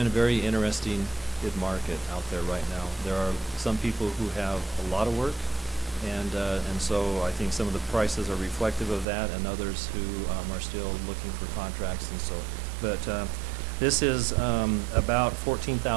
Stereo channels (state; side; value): drops out; left; at 9.1 s